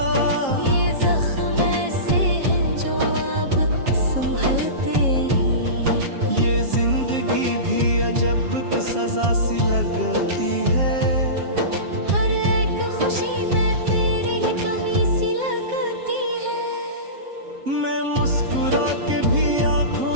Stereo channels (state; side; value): late; left; 7.4 ms